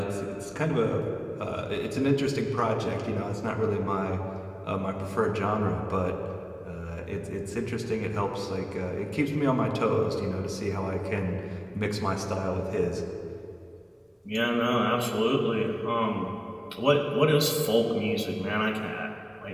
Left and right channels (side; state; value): both; identical; correlation 1.00